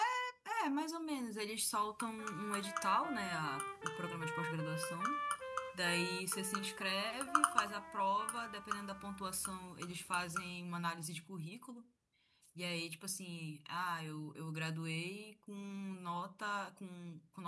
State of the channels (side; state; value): both; identical; correlation 1.00